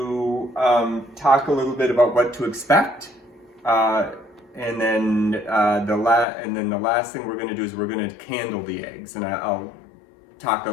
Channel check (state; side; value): drops out; right; at 6.2 s